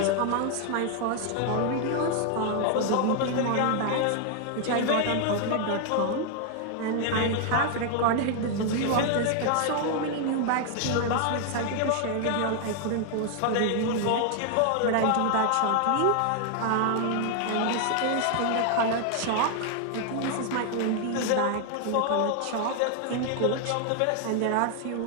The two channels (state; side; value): different; both; correlation 0.00